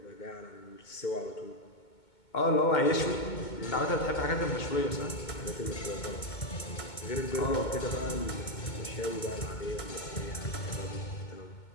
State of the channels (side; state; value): right; late; 2.2 ms